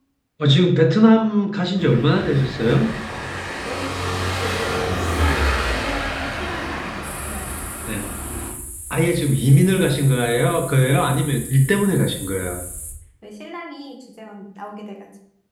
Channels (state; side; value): identical; both; correlation 1.00